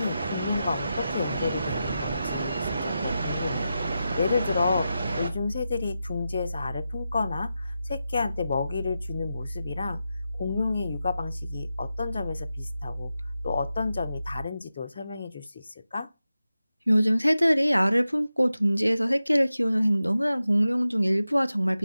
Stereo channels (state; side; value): inverted; both; correlation -0.91